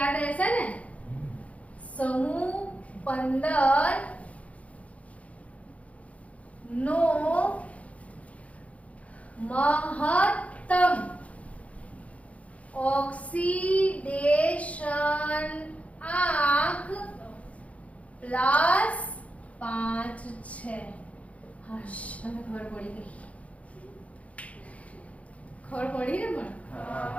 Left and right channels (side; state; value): right; late; 0.066 ms